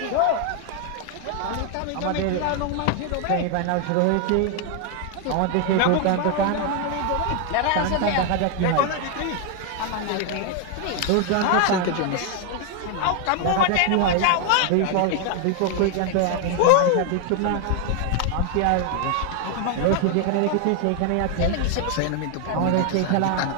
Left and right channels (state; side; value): different; both; correlation 0.00